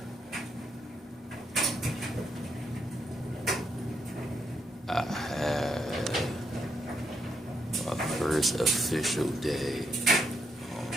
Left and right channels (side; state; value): both; normal; correlation 0.78